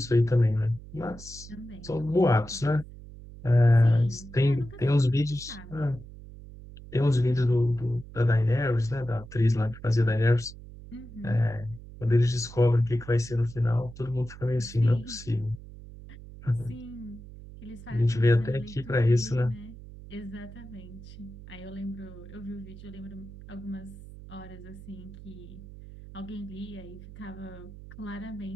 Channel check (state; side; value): noise; right; hum, 16 dB below the sound